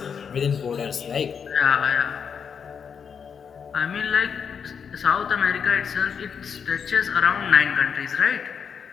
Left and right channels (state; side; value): quieter; right; 6.8 dB